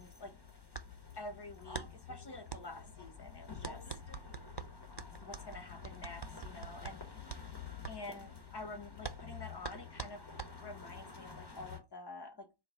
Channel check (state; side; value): late; right; 1.1 ms